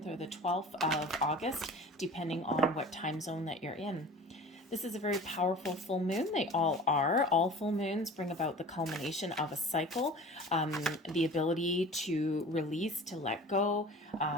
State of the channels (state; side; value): normal; both; correlation 0.40